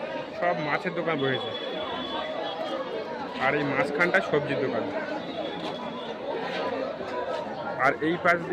সব মাছের দোকান বসেছে। আর এই মাঝখানটা সবজির দোকান। আর এই পাশ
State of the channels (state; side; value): identical; both; correlation 1.00